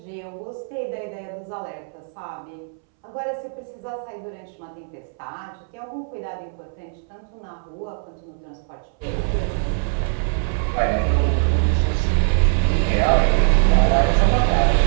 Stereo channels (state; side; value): silent; left; 64 dB below the other